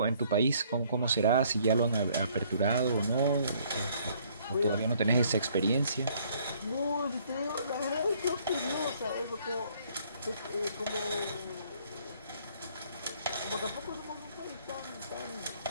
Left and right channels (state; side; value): inverted; both; correlation -0.62